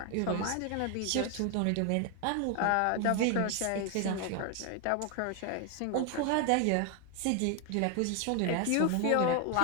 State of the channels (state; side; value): different; both; correlation 0.01